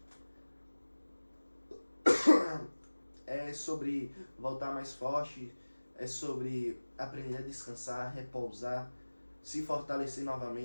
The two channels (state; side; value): inverted; both; correlation -1.00